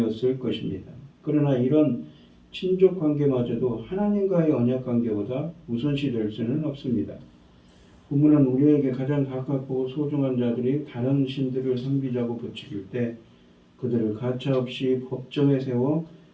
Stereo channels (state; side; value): identical; both; correlation 1.00